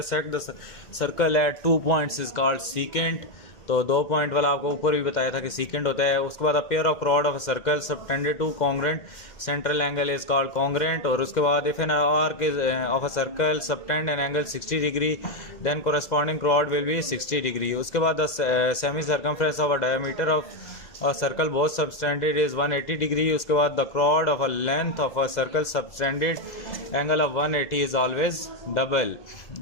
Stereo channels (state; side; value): late; right; 2.0 ms